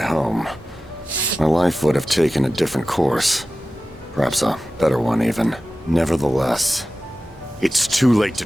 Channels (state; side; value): normal; both; correlation 0.95